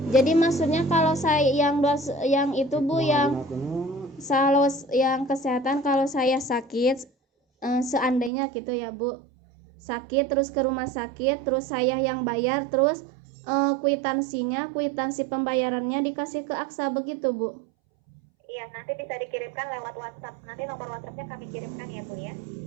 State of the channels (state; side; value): drops out; left; at 8.3 s